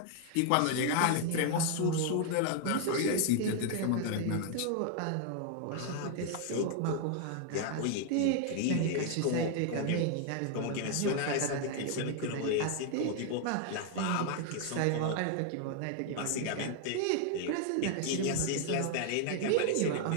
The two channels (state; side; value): different; both; correlation 0.00